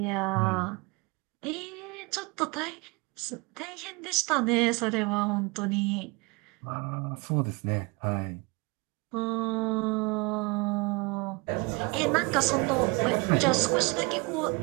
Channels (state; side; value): quieter; left; 27.8 dB